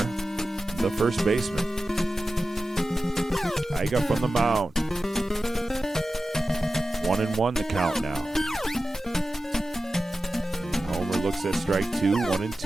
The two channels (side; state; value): both; normal; correlation 0.94